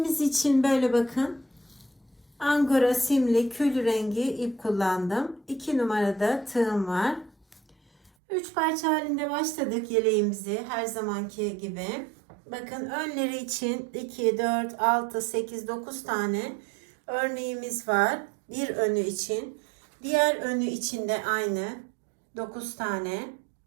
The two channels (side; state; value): left; drops out; at 8.1 s